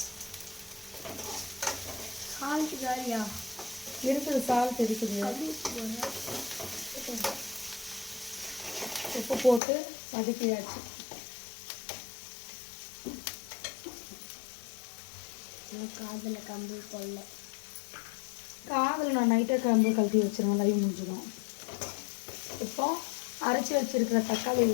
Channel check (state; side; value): drops out; right; at 9.6 s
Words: சால்ட் காலியா இருக்குது, சால்ட் இருக்குது. உப்பு போட்டு வதக்கியாச்சு. காதில் கம்பு கொள்ள. காதில் நான் நைட்டே கம்பு கழட்டி வச்சிருவேன், லைவ் முடிஞ்சிடும். இப்போ அரைச்சி வச்சிருக்கிற தக்காளி